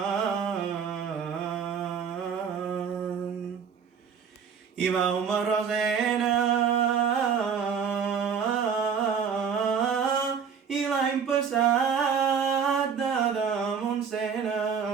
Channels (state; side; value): quieter; left; 6.8 dB